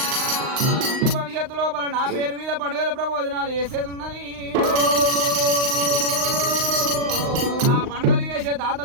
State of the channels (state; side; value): late; left; 39 ms